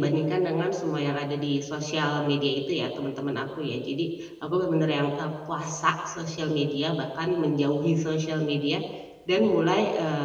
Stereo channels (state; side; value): identical; both; correlation 1.00